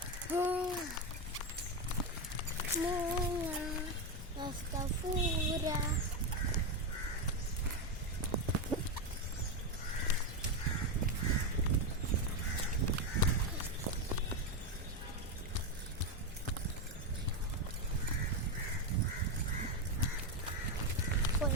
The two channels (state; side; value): normal; both; correlation 0.09